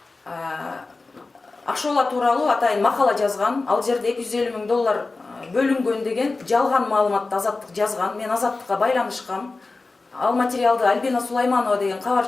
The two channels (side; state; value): right; quieter; 3.6 dB